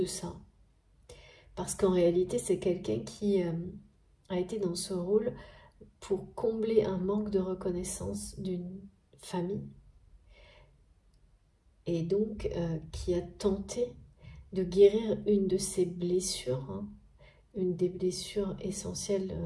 ça. Parce qu'en réalité, c'est quelqu'un qui a été dans ce rôle pour combler un manque de reconnaissance d'une famille. Et donc, qui a tenté de guérir une de ses blessures, hein, une des blessures essentielles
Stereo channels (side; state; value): both; identical; correlation 1.00